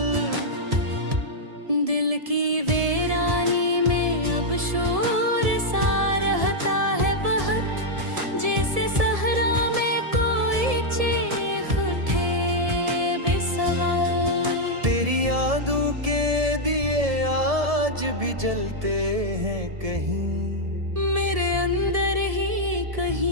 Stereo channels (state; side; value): late; left; 1.7 ms